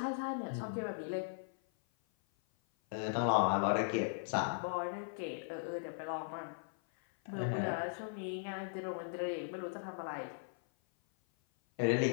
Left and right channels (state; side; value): silent; right; 52 dB below the other